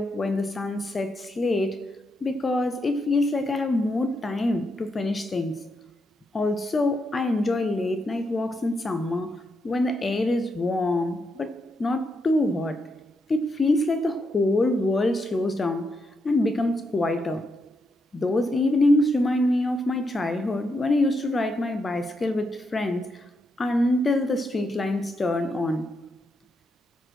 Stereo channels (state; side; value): normal; both; correlation 0.82